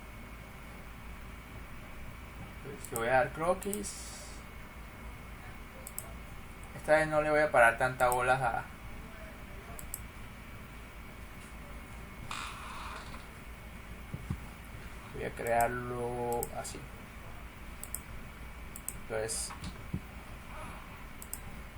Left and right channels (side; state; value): both; identical; correlation 1.00